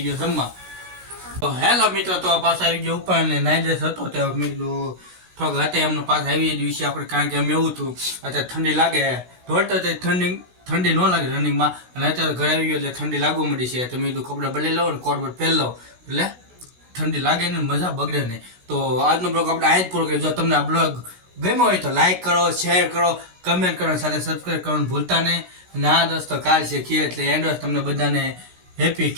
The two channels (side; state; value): left; late; 16 ms